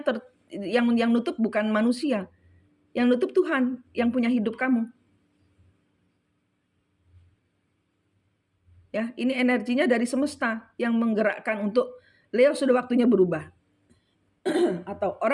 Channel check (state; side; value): identical; both; correlation 1.00